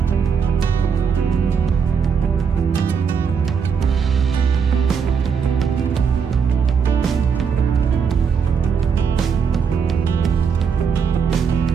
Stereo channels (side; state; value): left; quieter; 6.4 dB